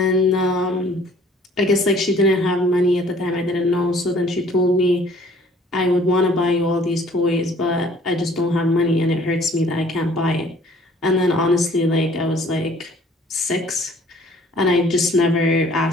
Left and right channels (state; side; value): normal; both; correlation 0.55